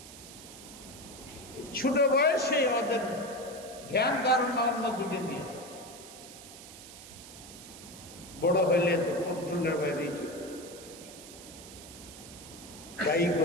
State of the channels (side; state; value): right; noise; hiss, 15 dB below the sound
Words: ছোট বয়সে ওদের ধ্যান ধারণা অন্যদিকে নিয়ে, বড় হইলে তো কন্ট্রোলের বাইরেই চলে। দায়ী